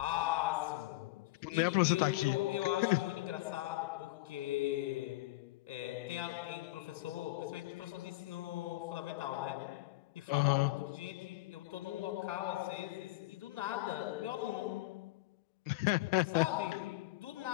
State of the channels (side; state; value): right; quieter; 18.7 dB